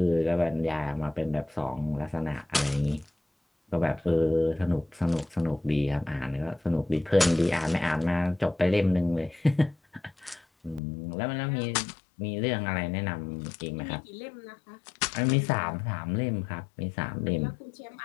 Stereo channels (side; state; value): right; drops out; at 10.8 s